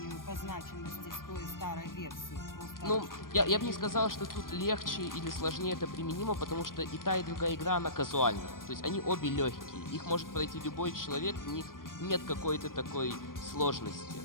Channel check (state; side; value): late; right; 0.91 ms